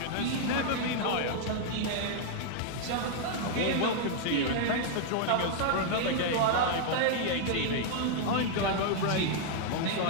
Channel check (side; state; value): both; different; correlation 0.00